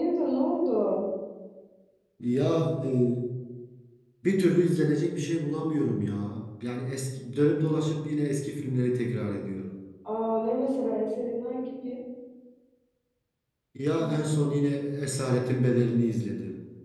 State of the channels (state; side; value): identical; both; correlation 1.00